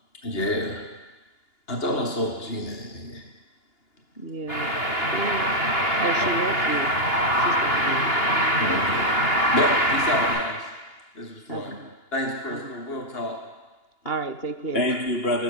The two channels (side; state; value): right; late; 2.9 ms